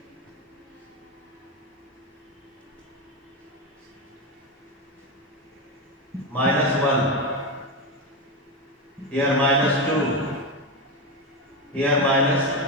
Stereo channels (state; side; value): normal; both; correlation 0.14